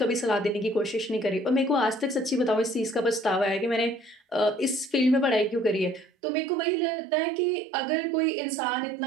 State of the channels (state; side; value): drops out; left; at 6.1 s